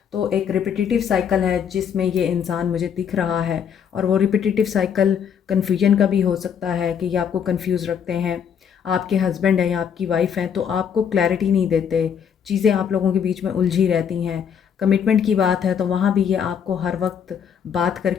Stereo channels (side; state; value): right; quieter; 7.8 dB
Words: तो एक रिपीटिटिव साइकिल है जिसमें ये इंसान मुझे दिख रहा है, और वो रिपीटिटिव साइकिल कन्फ्यूजन का भी हो सकता है कि ये आपको कन्फ्यूज़ रखते हैं। आपके हस्बैंड हैं या आपकी वाइफ हैं तो आपको क्लैरिटी नहीं देते, चीज़ें आप लोगों के बीच में उलझी रहती हैं। कमिटमेंट की बात है तो वहाँ भी ये आपको हर वक्त बात